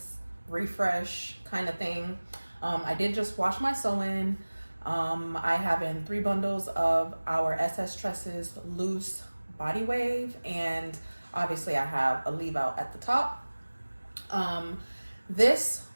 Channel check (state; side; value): inverted; both; correlation -1.00